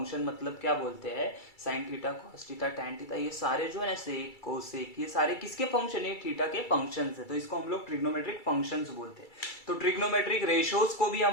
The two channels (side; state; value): right; late; 2.3 ms